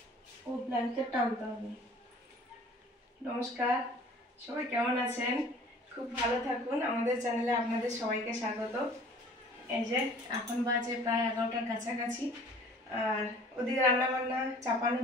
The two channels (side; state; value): both; normal; correlation 0.49